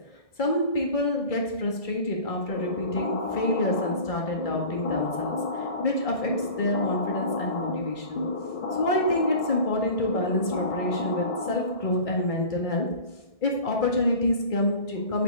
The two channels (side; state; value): right; late; 1.6 ms